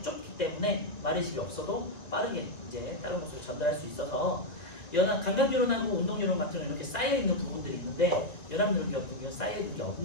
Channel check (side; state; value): right; late; 1.9 ms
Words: 좁기 때문에 마리집이 없어도 빠르게 이제 다른 곳으로 전달할 수 있어서, 감각뉴런하고 운동뉴런 같은 경우는 이렇게 쌓여 있는 부분들이 있는데, 연합뉴런 같은 경우는 쌓여 있는 게